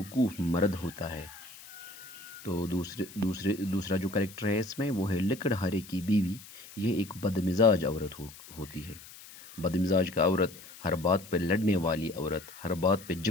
مرد ہوتا ہے۔ تو دوسرا جو کریکٹر ہے اس میں وہ ہے لکڑہارے کی بیوی۔ یہ ایک بدمزاج عورت ہوتی ہے۔ بدمزاج کا عورت، ہر بات پہ لڑنے والی عورت، ہر بات پہ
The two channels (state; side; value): noise; left; hiss, 18 dB below the sound